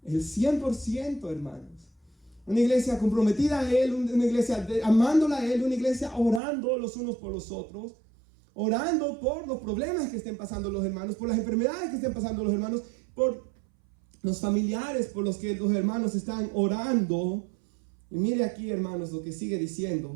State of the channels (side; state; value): left; drops out; at 6.4 s